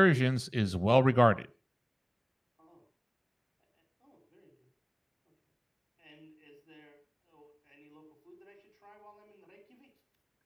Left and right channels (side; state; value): both; identical; correlation 1.00